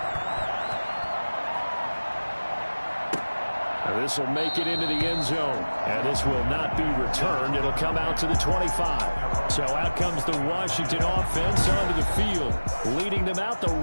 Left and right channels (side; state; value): both; inverted; correlation -1.00